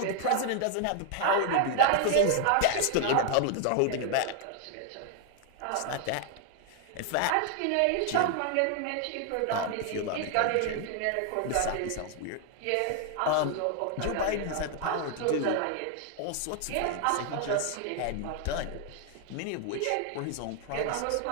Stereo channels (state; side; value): different; both; correlation 0.00